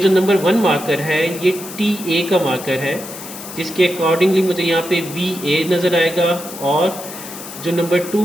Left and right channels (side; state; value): left; noise; hiss, 12 dB below the sound